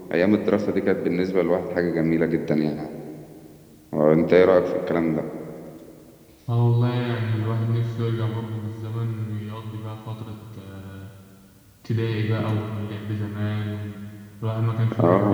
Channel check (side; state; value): both; identical; correlation 1.00